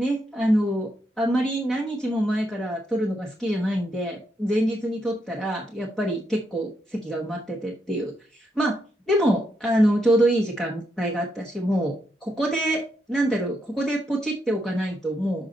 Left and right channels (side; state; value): both; normal; correlation 0.80